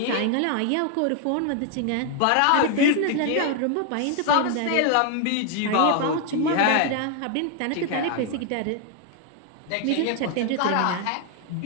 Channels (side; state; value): both; different; correlation 0.00